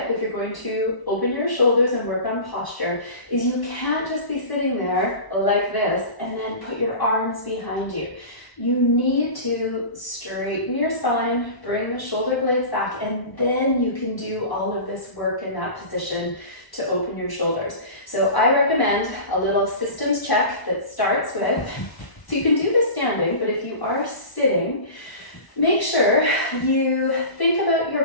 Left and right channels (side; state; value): right; late; 1.0 ms